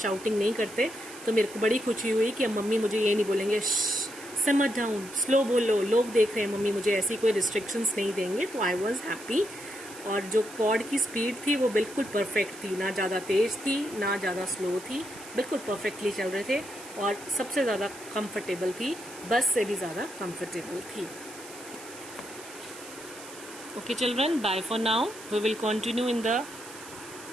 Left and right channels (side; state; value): right; noise; hiss, 16 dB below the sound